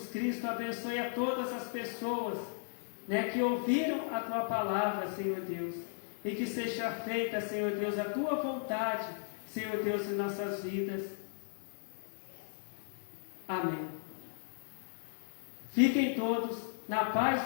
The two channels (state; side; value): silent; right; digital silence